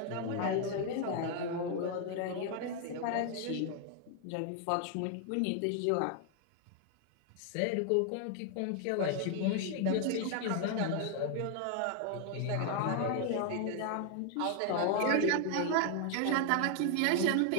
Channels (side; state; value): both; different; correlation 0.00